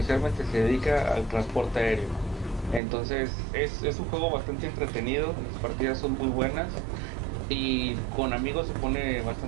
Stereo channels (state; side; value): drops out; left; at 2.8 s